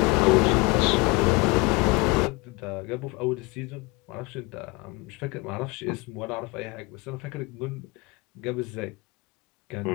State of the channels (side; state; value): right; quieter; 26.0 dB